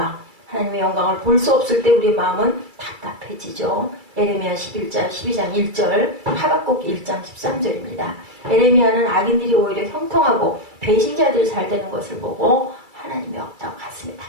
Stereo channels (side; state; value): left; late; 2.3 ms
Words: 하나님의 영광을 볼 수 없을 때 우리의 마음은 답답해지죠. 에레미야 12장 1절, 하박국 1장 13절입니다. 에레미야는 악인들이 오히려 형통하고 배신자들이 잘 되는 것을 보고 하나님이 없다고 가슴이